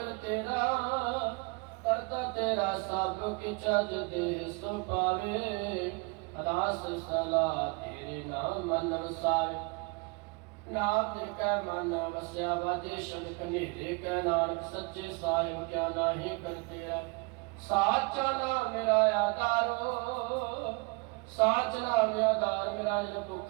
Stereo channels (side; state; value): left; quieter; 29.8 dB